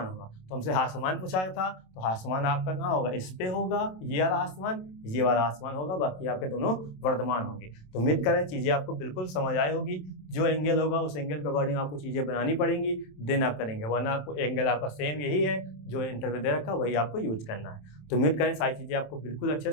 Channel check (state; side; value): late; right; 27 ms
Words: होगा। तो हमसे हास्यमान पूछा था, तो हास्यमान आपका कहाँ होगा, इस पे होगा, ये वाला हास्यमान, ये वाला हास्यमान होगा, बाकी आपके दोनों वर्धमान होंगे। तो उम्मीद करें चीज़ें आपको बिल्कुल समझ आई होगी। जो एंगल होगा उस एंगल के अकॉर्डिंग आपको चीज़ें बनानी पड़ेंगी, देन आप करेंगे, वरना आपको एंगल आपका सेम यही है जो इंटरव्यू दे रखा वही आपको यूज करना है। तो उम्मीद करें सारी चीज़ें आपको बिल्कुल अच्छे